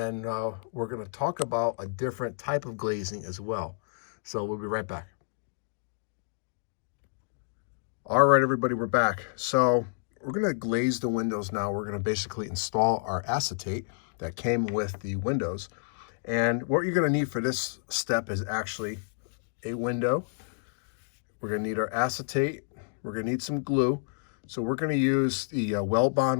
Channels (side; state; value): right; silent; digital silence